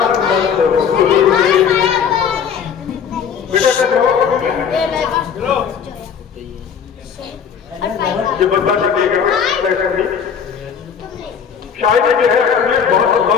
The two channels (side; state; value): right; quieter; 7.3 dB